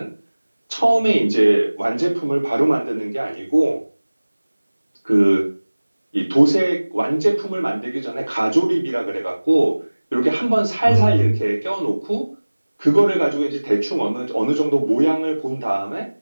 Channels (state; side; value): inverted; both; correlation -1.00